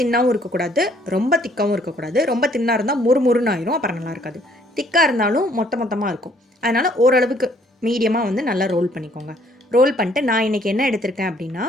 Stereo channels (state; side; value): normal; both; correlation 0.63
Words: இருக்கக்கூடாது, ரொம்ப திக்காகவும் இருக்கக்கூடாது. ரொம்ப தின்னாக இருந்தால் முறுமுறுன்னு ஆயிரும், அப்புறம் நல்லா இருக்காது. திக்காக இருந்தாலும் மொத்தமாக இருக்கும். அதனால் ஓரளவுக்கு மீடியமாக நல்லா ரோல் பண்ணிக்கோங்க. ரோல் பண்ணிட்டு நான் இன்றைக்கி என்ன எடுத்திருக்கேன் அப்படின்னா,